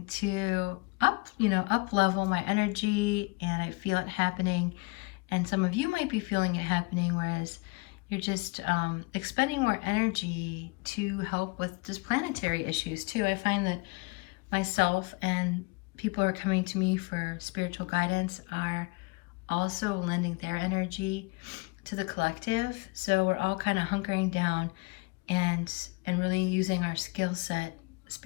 to up level my energy, and I feel it happening. And some of you might be feeling it happening, whereas you're just expending more energy to help with just planetary issues too. I find that myself and people who are coming to me for spiritual guidance are also lending their energy to the collective. So we're all kind of hunkering down and really using our skill set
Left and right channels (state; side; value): quieter; right; 26.9 dB